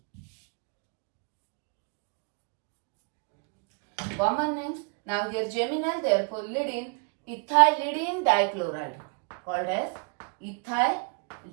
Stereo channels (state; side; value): quieter; left; 39.6 dB